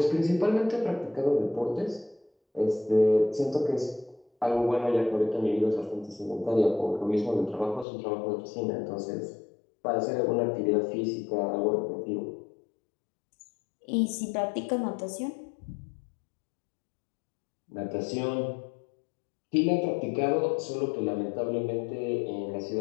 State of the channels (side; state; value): right; drops out; at 7.9 s